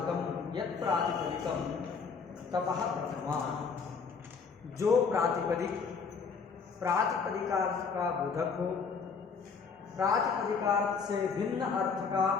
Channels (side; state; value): right; quieter; 5.4 dB